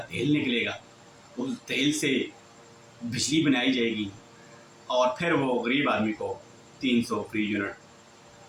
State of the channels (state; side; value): identical; both; correlation 1.00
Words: तेल निकलेगा, उस तेल से बिजली बनाई जाएगी और फिर वो गरीब आदमी को 300 फ्री